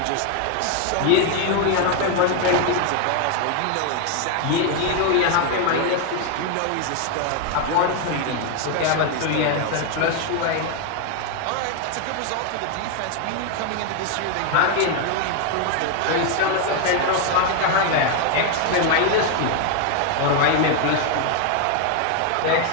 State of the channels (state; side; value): different; both; correlation 0.01